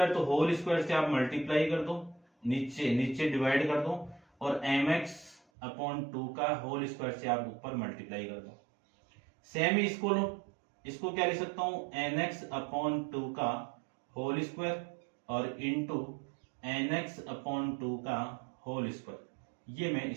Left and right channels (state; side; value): drops out; left; at 5.4 s